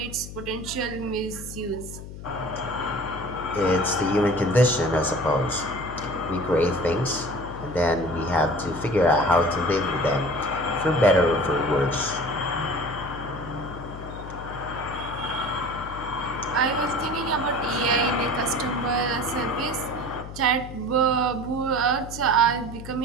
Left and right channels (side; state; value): left; noise; hum, 12 dB below the sound